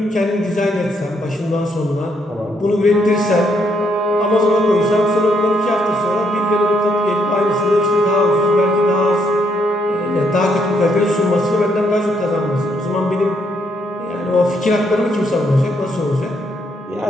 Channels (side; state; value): both; normal; correlation 0.74